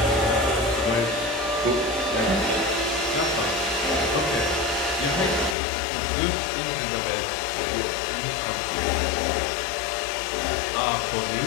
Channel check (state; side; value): drops out; right; at 5.6 s